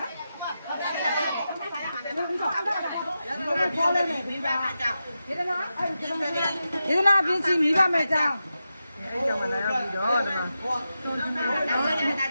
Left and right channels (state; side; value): inverted; both; correlation -0.90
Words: ယေဒနာပြင်းစီမိဘမဲ့ကြောင်းအဲ့ကြောင့်မလာရောက်ပြီးတော့ဒီမှာလ